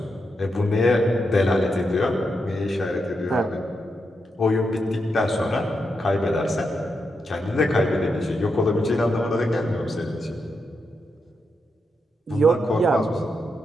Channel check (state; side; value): normal; both; correlation 0.84